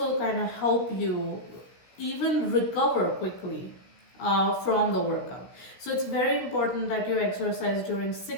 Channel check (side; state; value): right; late; 16 ms